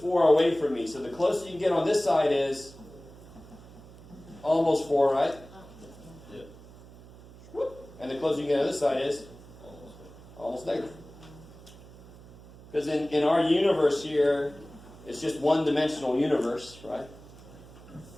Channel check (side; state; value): right; noise; hum, 20 dB below the sound